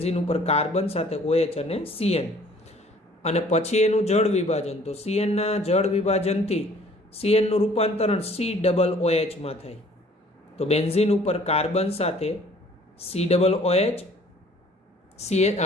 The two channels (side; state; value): both; normal; correlation 0.55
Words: ઉપર કાર્બન સાથે OH અને CN. અને પછી એનું જળ વિભાજન, તો CN ના જળ વિભાજનથી CN નું રૂપાંતરણ COOH માં થાય. તો બેન્ઝીન ઉપર કાર્બન સાથે COOH,